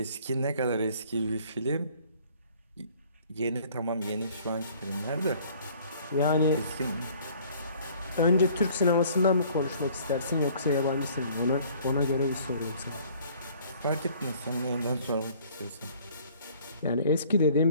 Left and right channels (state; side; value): inverted; both; correlation -0.55